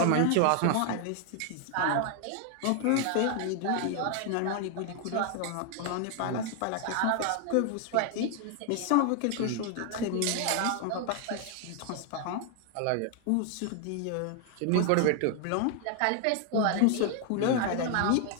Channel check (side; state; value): both; different; correlation 0.00